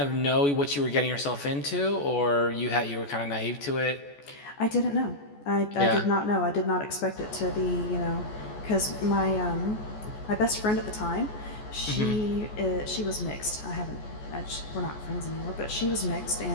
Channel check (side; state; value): right; late; 14 ms